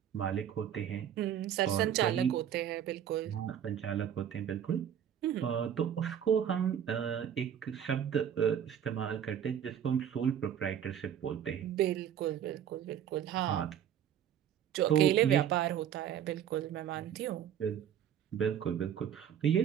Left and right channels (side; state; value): left; quieter; 9.5 dB